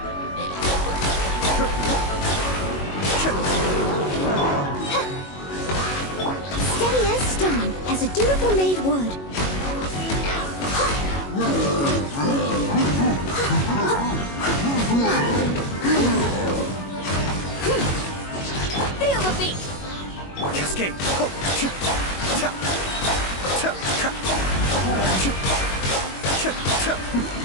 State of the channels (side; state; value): right; late; 21 ms